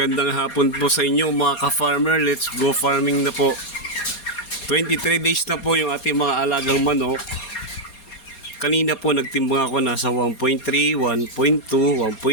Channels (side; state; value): right; late; 4.2 ms